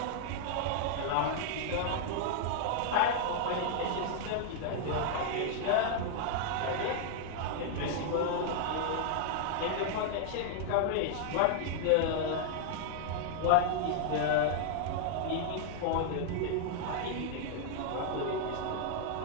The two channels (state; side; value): different; both; correlation -0.01